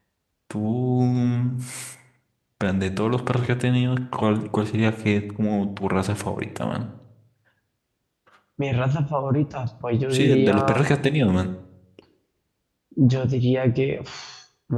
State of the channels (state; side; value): identical; both; correlation 1.00